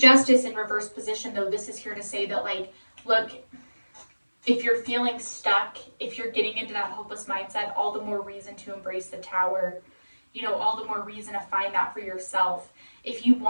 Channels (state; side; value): inverted; both; correlation -1.00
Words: Justice in reverse position, though, this is here to say that, like, look, if you're feeling stuck, if you're getting into that hopeless mindset, all the more reason to embrace the Tower. You know, all the more reason to find that for yourself. If you